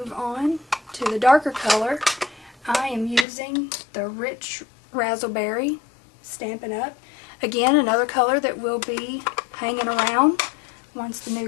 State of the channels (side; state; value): right; drops out; at 3.2 s